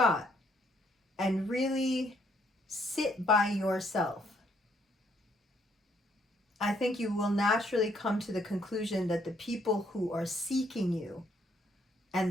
and really sit by yourself, I think you will naturally come to the conclusion that the people who are seeking you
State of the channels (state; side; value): normal; both; correlation 0.69